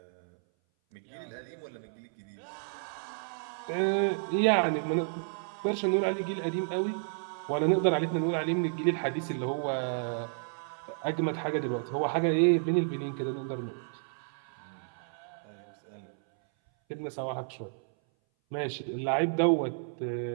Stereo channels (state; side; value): silent; left; 57 dB below the other